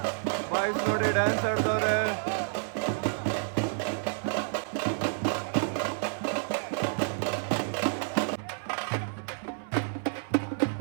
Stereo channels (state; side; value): silent; left; 58 dB below the other